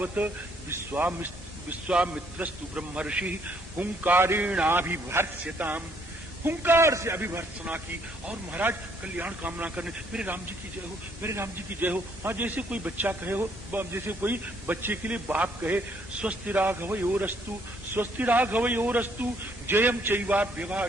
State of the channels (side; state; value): both; normal; correlation 0.67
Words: विश्वामित्रस्तु ब्रह्मर्षि हुंकारेणाभिभर्त्स्यताम। हुंकार से अभिभर्त्सना की और महाराज कल्याण कामना करने, मेरे राम जी की जय हो, मेरे राम जी की जय हो। हाँ, जैसे कोई बच्चा कहे हो, जैसे कोई बच्चे के लिए बाप कहे स्वस्ति राघवयोरस्तु, स्वस्ति राघवयोरस्तु जयम